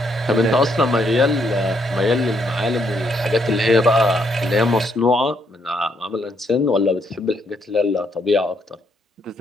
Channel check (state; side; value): normal; both; correlation 0.73